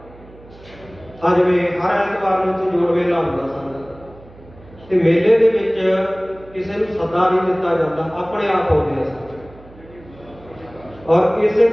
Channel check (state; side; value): noise; right; hum, 22 dB below the sound